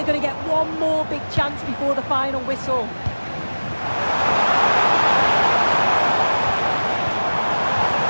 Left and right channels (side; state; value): both; inverted; correlation -1.00